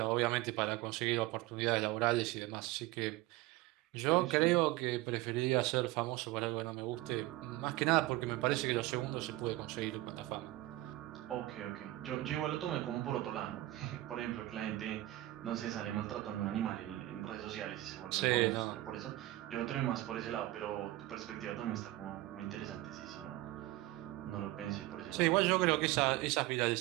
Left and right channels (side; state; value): left; quieter; 17.4 dB